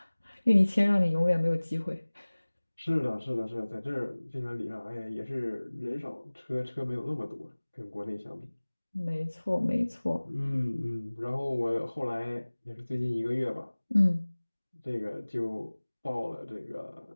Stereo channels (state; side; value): inverted; both; correlation -1.00